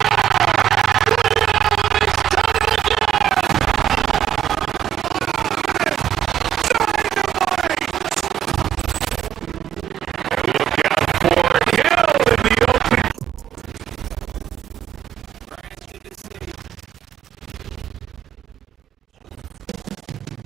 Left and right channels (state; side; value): quieter; left; 10.4 dB